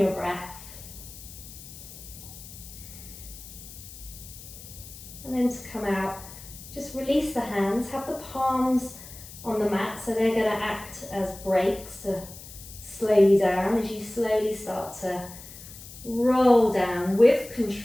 breath. And then to come out, just release the hands. Have the palms on the mat, so they're going to act as brakes to slow you down as you slowly start to roll down with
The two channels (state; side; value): noise; left; hiss, 16 dB below the sound